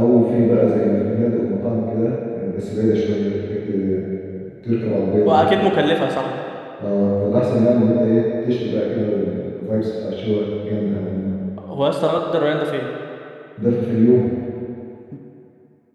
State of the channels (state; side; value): identical; both; correlation 1.00